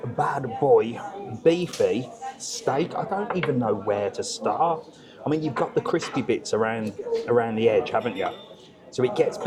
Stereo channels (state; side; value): identical; both; correlation 1.00